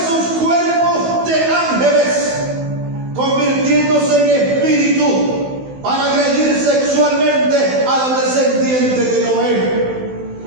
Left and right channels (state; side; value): late; left; 16 ms